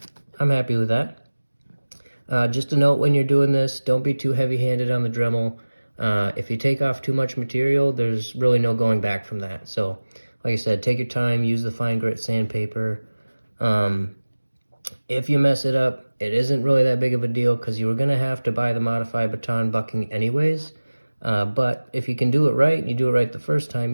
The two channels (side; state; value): both; inverted; correlation -1.00